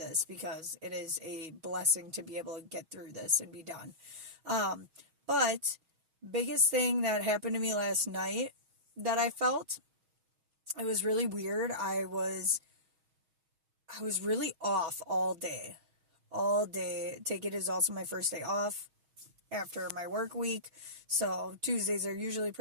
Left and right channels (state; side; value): late; left; 6.2 ms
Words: because it is a blessing to be able to get through this and be done. But biggest thing that happened to me last night that I felt, it was really weird. I was really off all day. Take it as also my first day off after my work week. So Tuesdays are usually